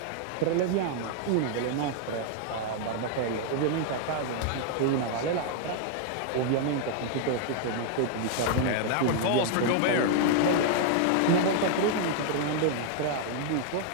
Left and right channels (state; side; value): different; both; correlation 0.00